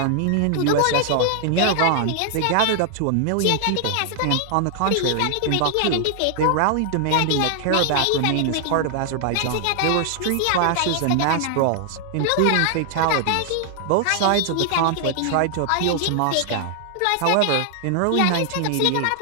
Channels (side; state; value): both; different; correlation 0.00